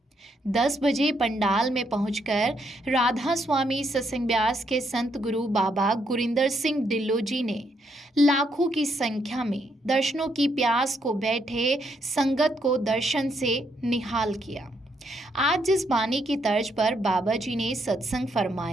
10 बजे पंडाल में पहुंचकर राधा स्वामी सत्संग ब्यास के संत गुरु बाबा गुरिंदर सिंह ढिल्लों जी ने लाखों की संख्या में दर्शनों की प्यास को बैठे संगत को दर्शन से निहाल किया। आज जिस बानी की तर्ज पर बाबा जी ने सत्संग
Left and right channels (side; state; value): both; normal; correlation 0.75